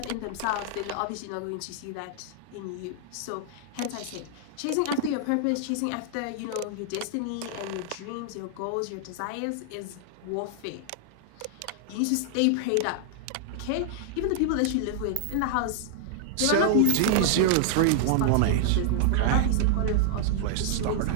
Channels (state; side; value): different; both; correlation -0.01